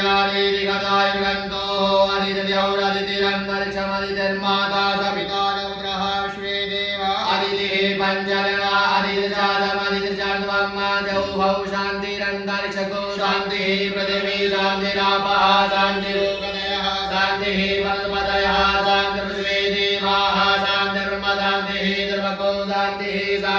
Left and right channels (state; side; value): identical; both; correlation 1.00